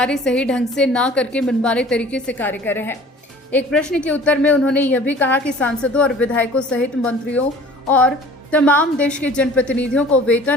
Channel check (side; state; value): both; normal; correlation 0.47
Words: सही ढंग से न करके मनमाने तरीके से कार्य कर रहे हैं। एक प्रश्न के उत्तर में उन्होंने यह भी कहा कि सांसदों और विधायकों सहित मंत्रियों और तमाम देश के जनप्रतिनिधियों को